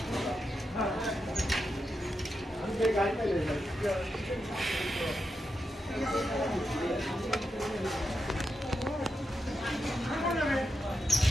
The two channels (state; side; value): normal; both; correlation 0.87